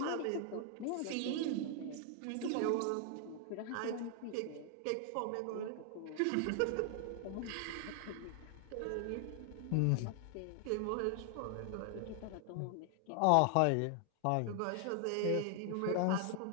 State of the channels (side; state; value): both; different; correlation 0.00